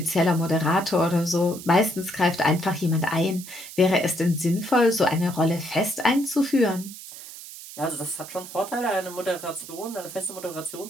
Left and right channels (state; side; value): noise; right; hiss, 14 dB below the sound